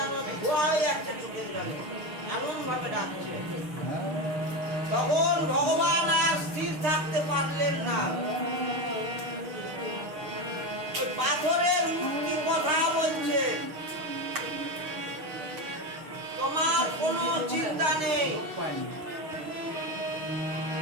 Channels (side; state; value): left; late; 6.5 ms